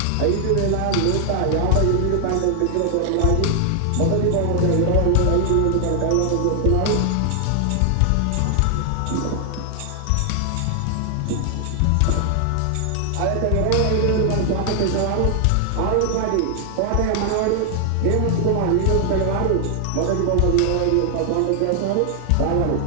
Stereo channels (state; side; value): different; both; correlation 0.00